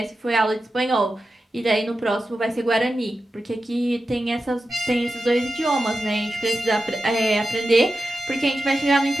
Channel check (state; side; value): normal; both; correlation 0.92